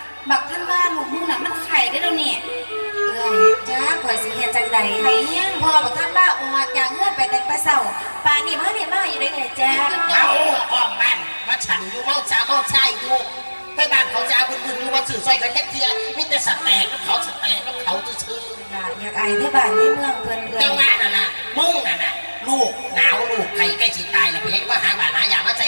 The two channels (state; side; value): inverted; both; correlation -1.00